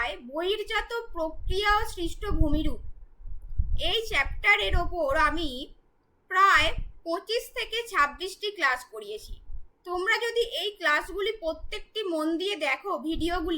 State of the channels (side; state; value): both; identical; correlation 1.00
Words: বহির্জাত প্রক্রিয়া ও সৃষ্ট ভূমিরূপ এই চ্যাপ্টারের ওপর আমি প্রায় 25 থেকে 26টি ক্লাস করিয়েছি। তোমরা যদি এই ক্লাসগুলি প্রত্যেকটি মন দিয়ে দেখো